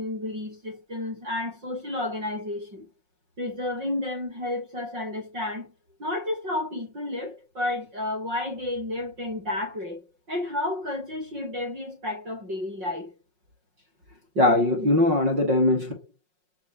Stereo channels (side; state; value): left; late; 5.5 ms